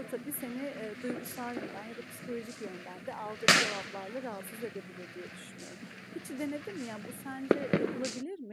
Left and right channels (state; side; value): identical; both; correlation 1.00